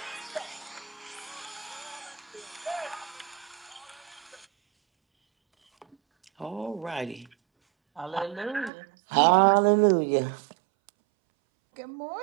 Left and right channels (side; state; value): left; drops out; at 8.7 s